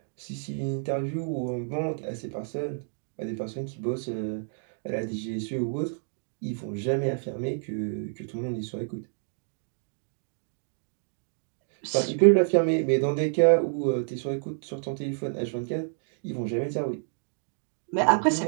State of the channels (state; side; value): silent; left; digital silence